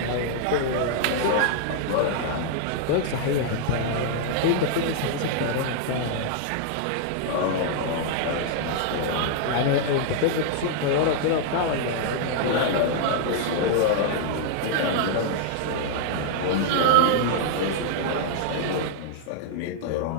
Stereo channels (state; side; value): different; both; correlation -0.01